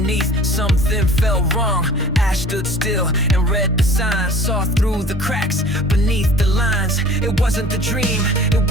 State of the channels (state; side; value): normal; both; correlation 0.45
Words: something felt wrong. Ash stood still and read the signs, saw through the cracks beneath the lines. It wasn't the dream, it